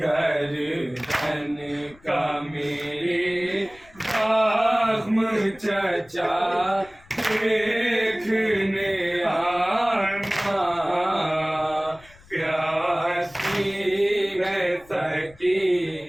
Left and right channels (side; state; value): left; noise; rumble, 26 dB below the sound